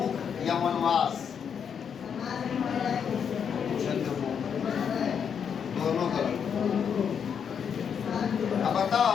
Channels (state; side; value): quieter; right; 7.4 dB